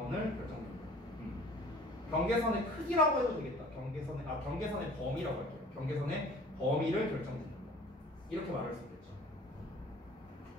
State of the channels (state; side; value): normal; both; correlation 0.48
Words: 결정짓는다. 경계선의 크기라고 해도 되겠다. 경계선의 범위라고 할게요. 경계선의 범위를 결정짓는다. 이렇게 말할 수 있겠죠.